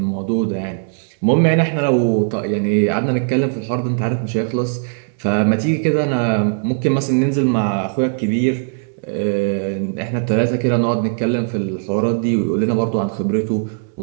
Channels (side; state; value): left; silent; digital silence